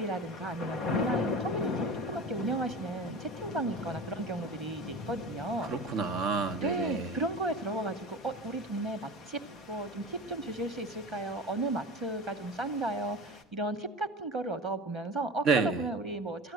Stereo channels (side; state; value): both; normal; correlation 0.33